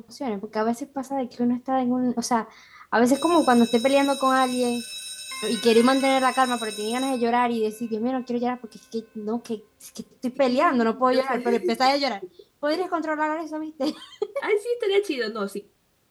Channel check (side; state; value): both; identical; correlation 1.00